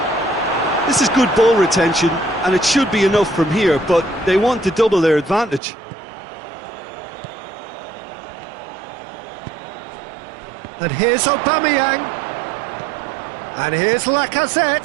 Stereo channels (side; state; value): left; drops out; at 5.6 s